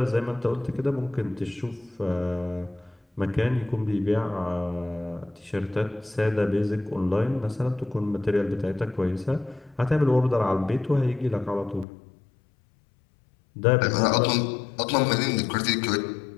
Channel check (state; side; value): drops out; right; at 11.9 s